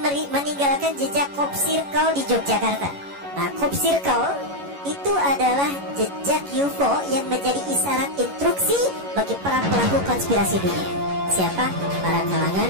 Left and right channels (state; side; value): late; left; 11 ms